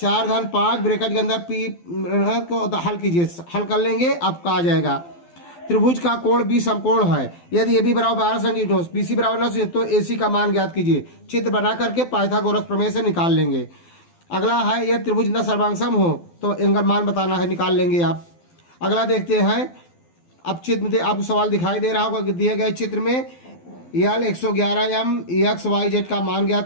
धन 5 ब्रैकेट के अंदर पी को हल कीजिए, हल कर लेंगे, आपका आ जाएगा। त्रिभुज का कोण बी समकोण है, यदि ए बी बराबर 12 सेंटीमीटर, बी सी बराबर 9 तो ए सी का मान ज्ञात कीजिए। चित्र बना करके पाइथागोरस प्रमेय से निकाल लेंगे। अगला है, यह त्रिभुज न सर्वांगसम हो तो इनका मान बताना है, निकाल लेंगे आप। अगला देखते हैं, अब चित्र में आपको सवाल दिखाई दे रहा होगा, दिए गए चित्र में यल 111m XYZ का मान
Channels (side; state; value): right; late; 12 ms